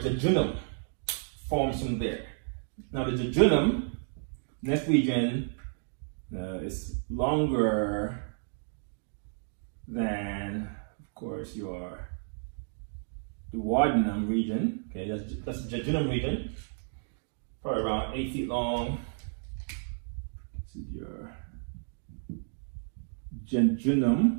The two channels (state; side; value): silent; left; digital silence